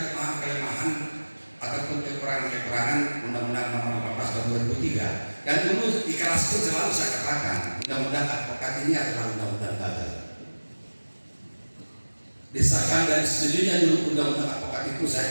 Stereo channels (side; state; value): both; inverted; correlation -1.00